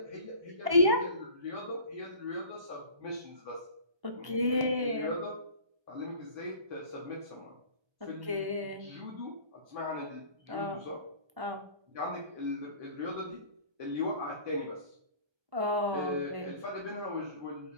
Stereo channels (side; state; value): left; late; 1.1 ms